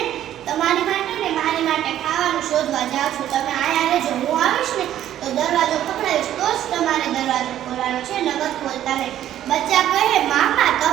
તમારી માટે ને મારી માટે ખાવાનું શોધવા જાઉં છું. તમે આયા રહેજો. હું આવીશ ને તો દરવાજો પકડાવીશ તો જ તમારે દરવાજો ખોલવાનો છે, નગર ખોલતા નહીં. બચ્ચા કહે, મામા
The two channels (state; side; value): quieter; left; 11.8 dB